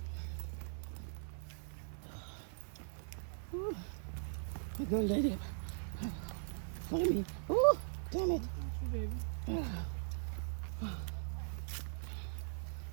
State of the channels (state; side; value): silent; left; digital silence